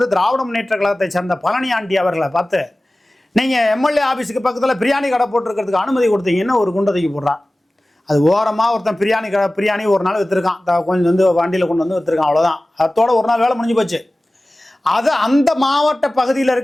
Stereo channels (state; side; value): normal; both; correlation 0.97